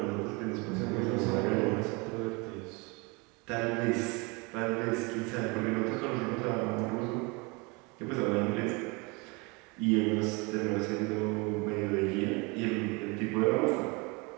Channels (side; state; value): left; quieter; 28.2 dB